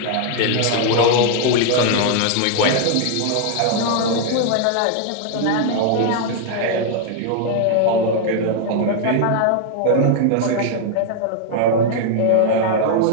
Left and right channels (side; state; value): both; different; correlation 0.00